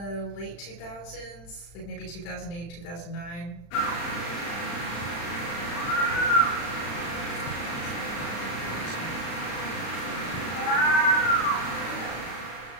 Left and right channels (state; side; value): late; right; 35 ms